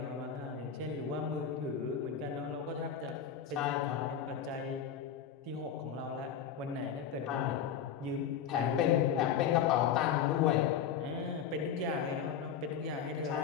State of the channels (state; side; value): quieter; right; 8.1 dB